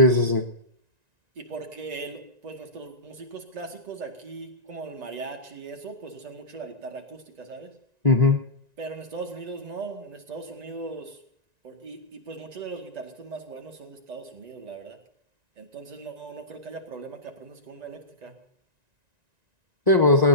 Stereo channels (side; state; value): left; late; 1.9 ms